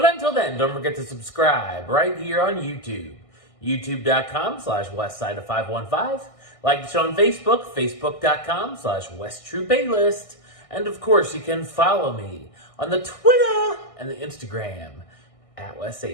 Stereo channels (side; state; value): right; late; 1.6 ms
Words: until then, don't forget to subscribe right here on YouTube. youtube.com/westside of 515. Like the show on Facebook, facebook.com/westtrueplaylist. And of course, you can follow me on the Twitter and the Instagram at